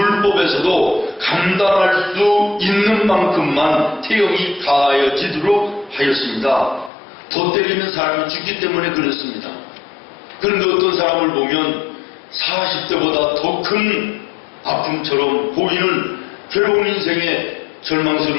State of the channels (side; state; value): right; drops out; at 6.9 s